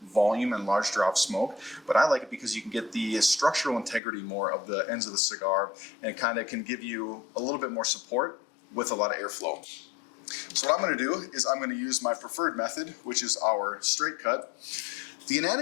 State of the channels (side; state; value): right; drops out; at 4.0 s